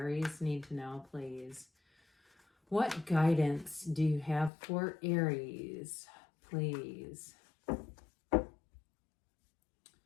need to know, please? What guidance do you have for Aries, please? All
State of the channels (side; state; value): right; drops out; at 4.5 s